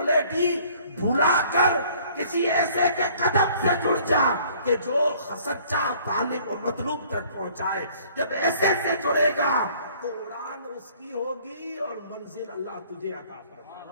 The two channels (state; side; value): inverted; both; correlation -0.56